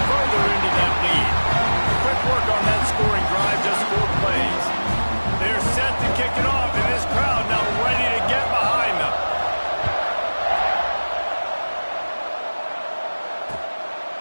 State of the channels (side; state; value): both; inverted; correlation -1.00